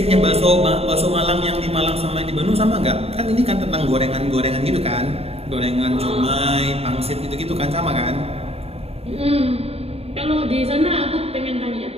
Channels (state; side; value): late; left; 0.29 ms